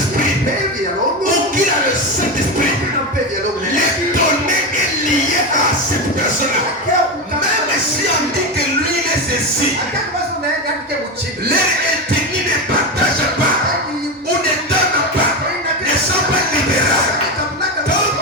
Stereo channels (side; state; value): both; normal; correlation 0.16